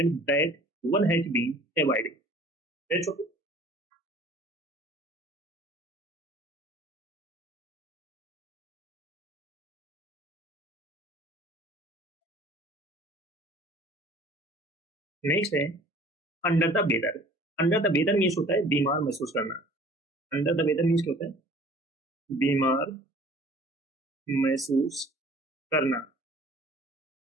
that one has been avoided. That's okay. Next है under the weather. Under the weather means होता है बीमार महसूस करना। अंडर द वेदर मीन्स क्या होता है, बीमार महसूस करना।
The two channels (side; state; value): both; normal; correlation 0.49